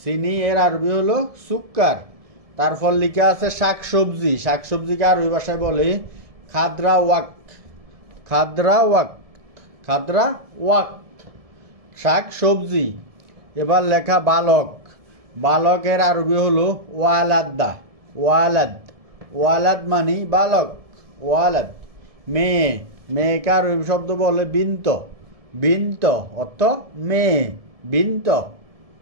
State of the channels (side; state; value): left; late; 1.7 ms